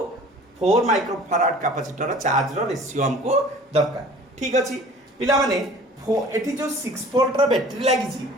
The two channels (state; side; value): normal; both; correlation 0.47